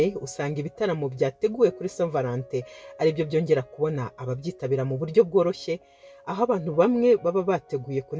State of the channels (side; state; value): both; identical; correlation 1.00